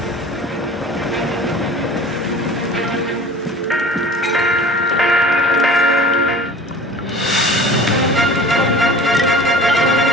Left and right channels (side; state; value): both; normal; correlation 0.42